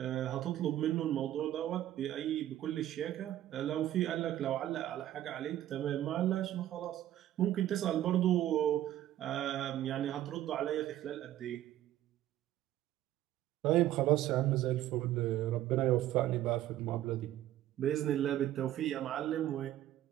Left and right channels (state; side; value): quieter; left; 13.1 dB